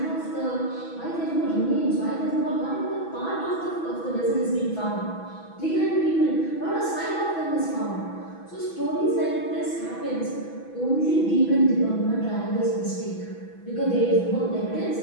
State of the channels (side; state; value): right; late; 6.1 ms